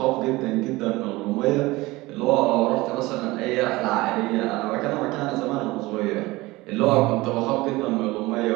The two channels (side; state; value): left; quieter; 20.5 dB